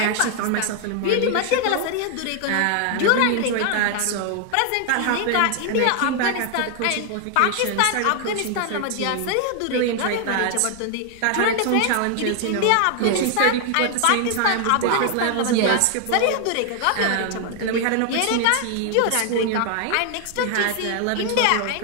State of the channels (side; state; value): both; different; correlation 0.00